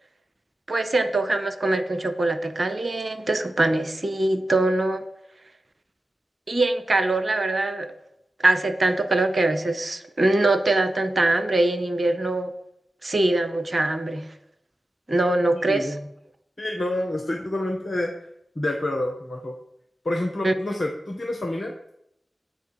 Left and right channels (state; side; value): normal; both; correlation 0.92